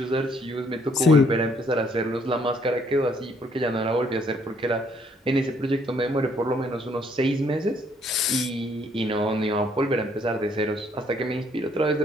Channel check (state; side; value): normal; both; correlation 0.66